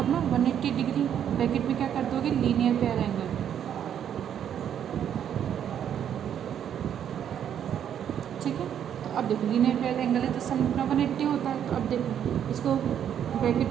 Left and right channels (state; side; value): quieter; left; 9.3 dB